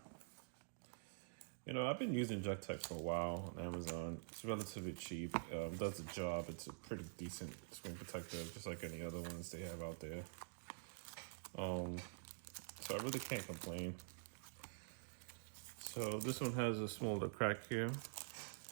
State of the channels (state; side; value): silent; left; digital silence